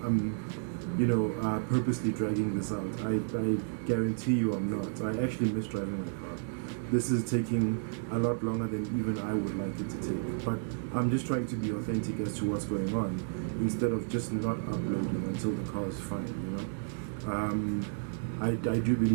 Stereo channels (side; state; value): left; silent; digital silence